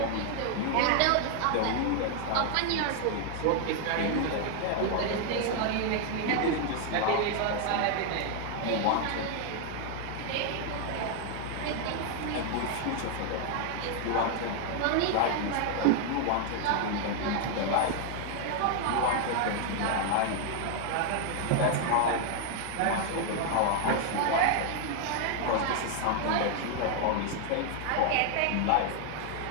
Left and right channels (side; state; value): both; different; correlation 0.00